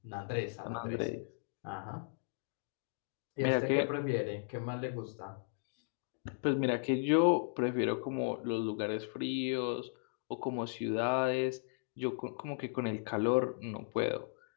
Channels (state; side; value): silent; right; digital silence